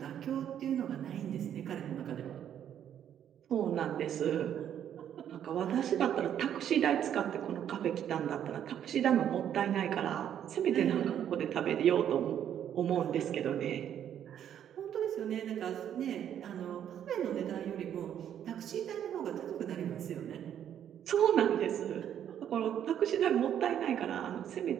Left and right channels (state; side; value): quieter; left; 9.8 dB